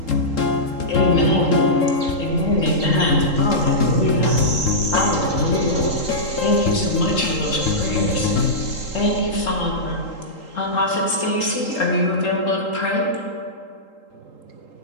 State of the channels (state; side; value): late; right; 3.8 ms